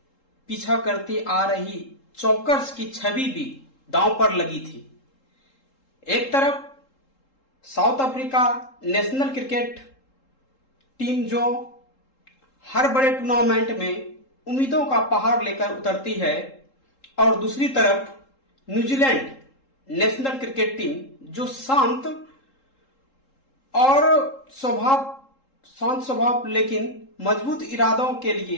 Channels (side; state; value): right; late; 3.7 ms